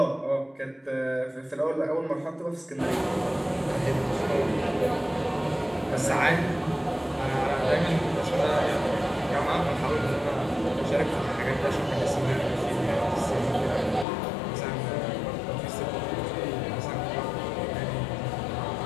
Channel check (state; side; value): drops out; right; at 14.1 s